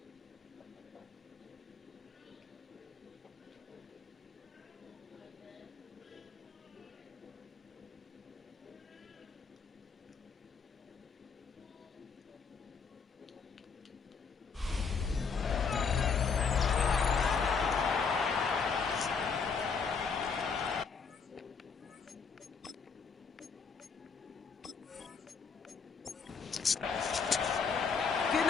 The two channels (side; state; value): right; quieter; 5.5 dB